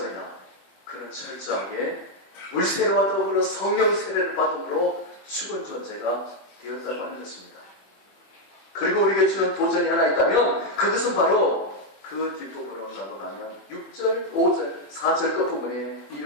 그는 철저하게 물세례와 더불어 성령 세례를 받음으로 죽은 존재가 되었다고 하는 것입니다. 그리고 우리에게 주는 도전이 하나 있다면 그것은 바로 그 뒷부분으로 넘어가면 6절, 5절, 4절 끝부분에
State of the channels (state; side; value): late; right; 21 ms